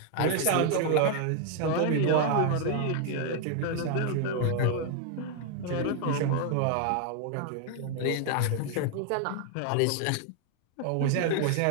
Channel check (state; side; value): different; both; correlation 0.00